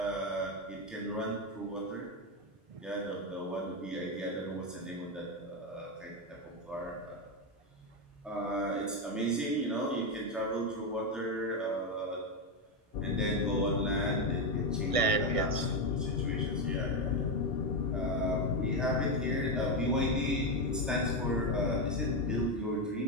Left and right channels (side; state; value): both; normal; correlation 0.08